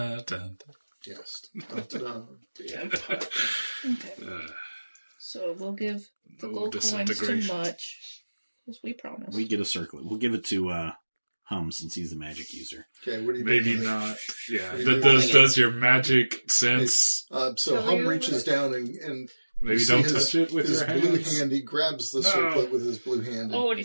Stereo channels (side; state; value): both; inverted; correlation -1.00